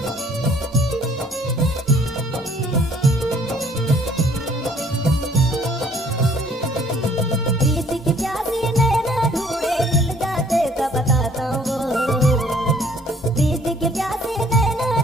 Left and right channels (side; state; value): both; normal; correlation 0.59